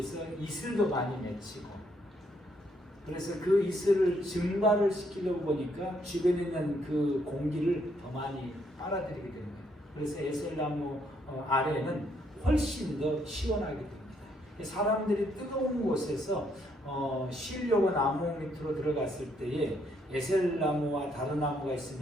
이슬도 많이 맺히고, 그래서 그 이슬을 증발을 시키려고 보니까 주변에 있는 그 공기를 더 많이 빨아들이게 되는 거예요. 그래서 에셀나무 아래는 훨씬 더 시원하게 됩니다. 사람들이 뜨거운 곳에서 쉬려고 나무 밑으로 들어갔을 때에 에셀나무와 다른 나무가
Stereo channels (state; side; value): normal; both; correlation 0.72